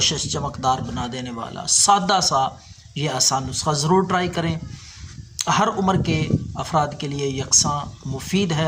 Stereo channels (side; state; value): both; identical; correlation 1.00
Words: چمکدار بنا دینے والا سادہ سا یہ آسان نسخہ ضرور ٹرائی کریں۔ ہر عمر کے افراد کے لیے یکساں مفید